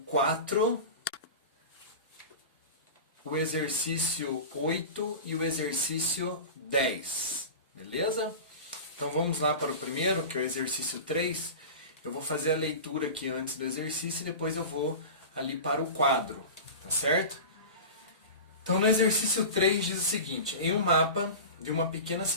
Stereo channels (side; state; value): both; inverted; correlation -0.31